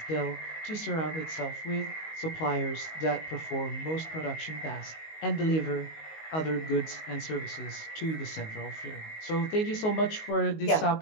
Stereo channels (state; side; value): late; right; 19 ms